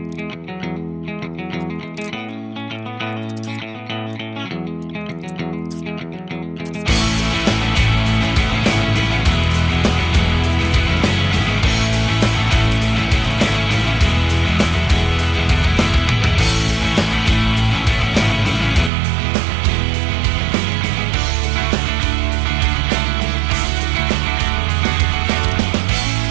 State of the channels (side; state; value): left; drops out; at 18.9 s